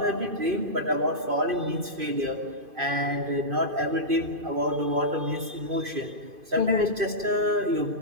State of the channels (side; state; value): left; late; 2.5 ms